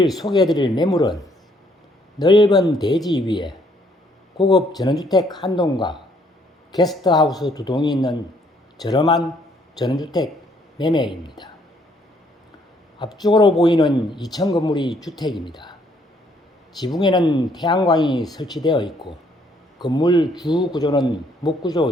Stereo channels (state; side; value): normal; both; correlation 0.67